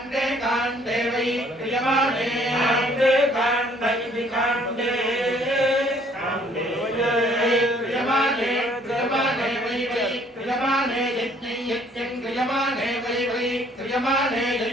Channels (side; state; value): both; normal; correlation 0.61